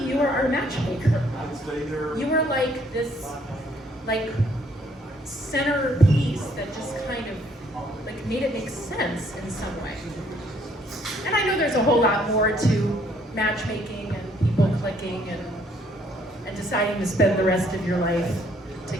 are our matchmaker. You were like this, centerpiece that just kind of, made it make sense in some way." And I know there's a whole lot more to matchmaking and people clicking and deciding to spend the rest of your life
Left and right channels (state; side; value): normal; both; correlation 0.65